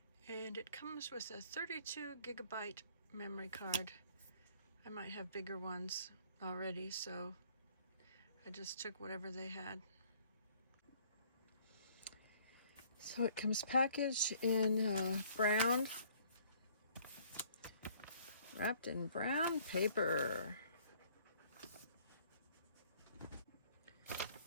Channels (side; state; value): both; inverted; correlation -0.59